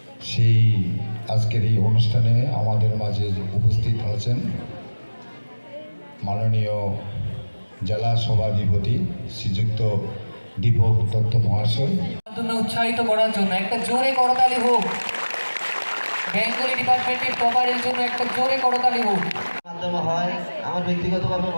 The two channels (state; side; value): inverted; both; correlation -1.00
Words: সেই আজকের এই অনুষ্ঠানে আমাদের মাঝে উপস্থিত আছেন মাননীয় জেলা সভাধিপতি শ্রীযুক্ত দীপক দত্ত মহাশয়। উৎসাহিত করার জন্য একটা জোরে করতালি হোক। বেঙ্গলি ডিপার্টমেন্টের টপারের জন্য একটা জোরে করতালি হোক। মাধ্যমে হয় আমার ব্যক্তিগতভাবে